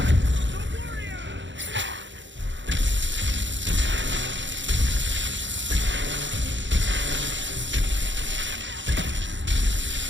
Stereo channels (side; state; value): left; late; 0.54 ms